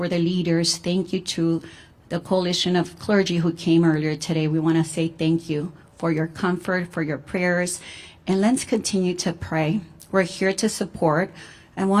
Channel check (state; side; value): identical; both; correlation 1.00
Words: the leaders, thank you to the coalition of clergy who came earlier today. We want to say thank you for your comfort, for your prayers, and let's continue to pray. We're here to support. And